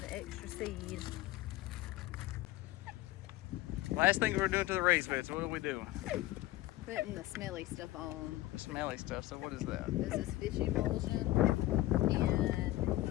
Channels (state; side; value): quieter; right; 17.0 dB